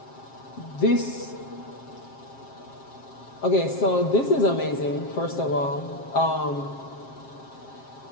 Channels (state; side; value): late; right; 7.4 ms